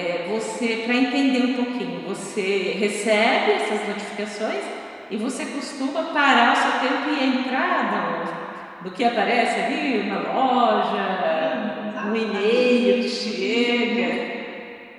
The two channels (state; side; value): identical; both; correlation 1.00